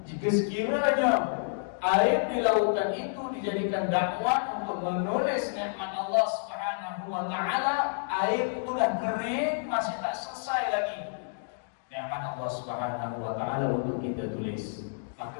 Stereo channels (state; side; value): silent; right; digital silence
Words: Jika sekiranya air di lautan itu dijadikan dakwah untuk menulis nikmat Allah Subhanahu wa taala, air itu dah kering, masih tak selesai lagi nikmat Allah Subhanahu wa taala untuk kita tulis.